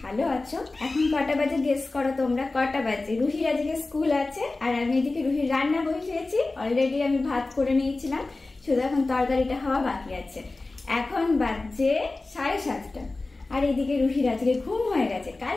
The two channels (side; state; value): right; quieter; 3.3 dB